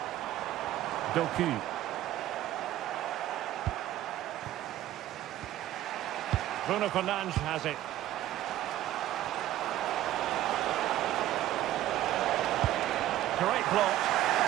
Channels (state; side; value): quieter; left; 13.7 dB